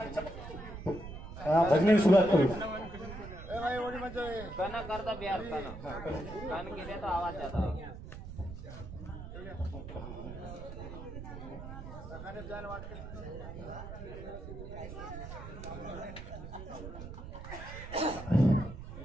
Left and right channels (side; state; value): right; noise; rumble, 10 dB below the sound